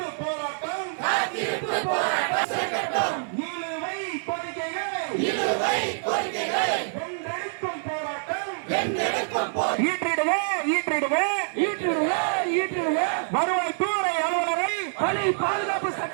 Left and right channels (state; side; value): silent; left; 57 dB below the other